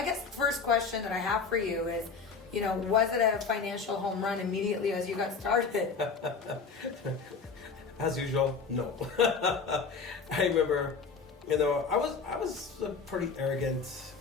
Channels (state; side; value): quieter; right; 5.1 dB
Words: guess the first question that I have for you is, you know, was it a financial home run immediately as you got started? As usual, no. I remember, you know, I was a pretty arrogant,